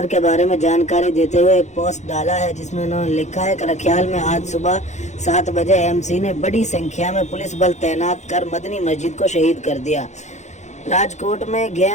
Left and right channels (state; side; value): late; right; 0.34 ms